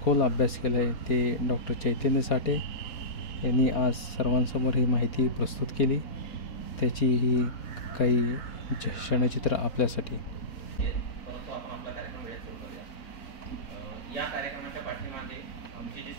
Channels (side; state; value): right; late; 4.3 ms